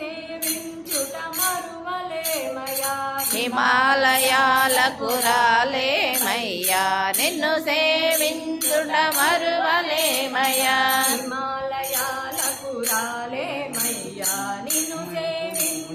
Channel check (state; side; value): identical; both; correlation 1.00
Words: మరువలేమయ్యా హిమాలయాలకు రాలేమయ్యా నిన్ను సేవించుట మరువలేమయ్యా హిమాలయాలకు రాలేమయ్యా నిన్ను